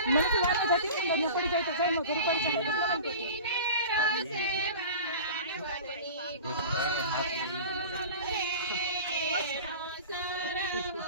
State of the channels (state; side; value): inverted; both; correlation -0.37